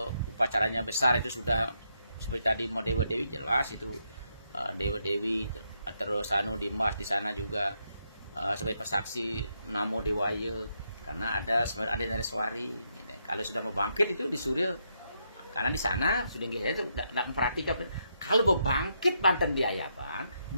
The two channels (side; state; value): both; inverted; correlation -0.79